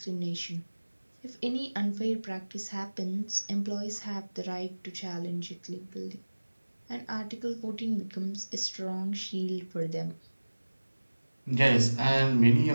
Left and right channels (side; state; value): both; inverted; correlation -1.00